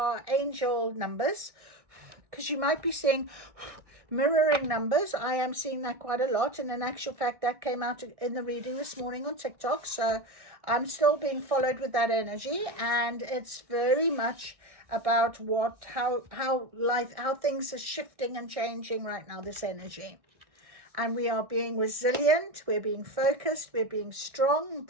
angel numbers, because you might be seeing mirroring numbers. I am seeing that quite a lot, and in actual fact that came out in the reading this morning on TikTok, so I'm still being followed with that energy, and it's very much about how things are shifting and changing right now, this energy. And we are being resilient, we're being focused, we're being strong,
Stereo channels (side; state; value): left; late; 1.6 ms